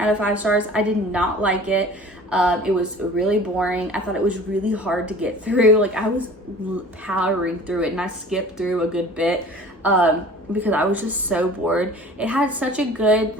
of 5 stars. I did not like it. It was really boring. I thought it was really hard to get through. Like, I was powering through it and I skipped through a good bit because I was just so bored. It had such a good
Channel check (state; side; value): normal; both; correlation 0.44